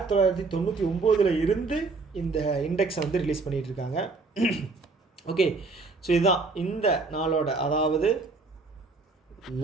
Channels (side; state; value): left; quieter; 3.9 dB